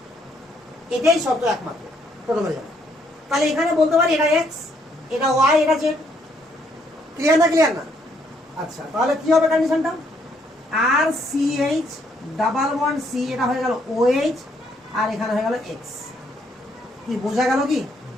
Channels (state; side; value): normal; both; correlation 0.71